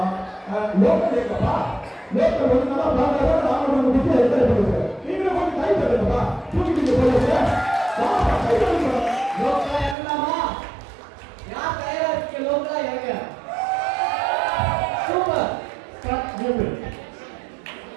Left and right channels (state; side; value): drops out; left; at 10.0 s